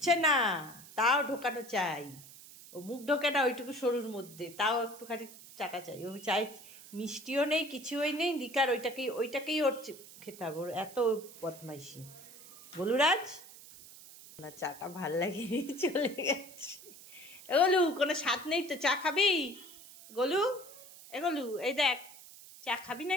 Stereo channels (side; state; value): right; noise; hiss, 18 dB below the sound